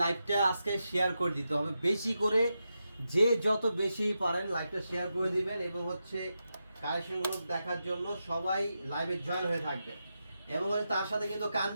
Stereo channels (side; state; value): both; inverted; correlation -0.88